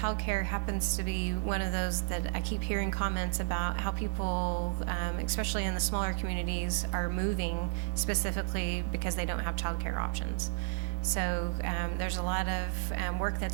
happens to be one of those that I keep hearing comments about how people, especially in the smaller communities, are moving specifically because they don't have childcare options. So there's a lot of work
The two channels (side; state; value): left; silent; digital silence